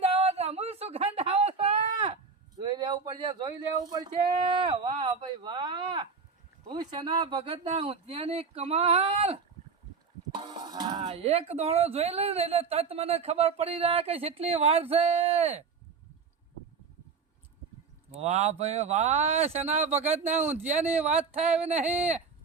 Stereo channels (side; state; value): left; quieter; 5.3 dB